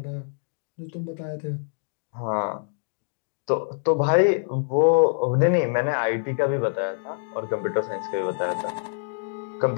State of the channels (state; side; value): silent; right; digital silence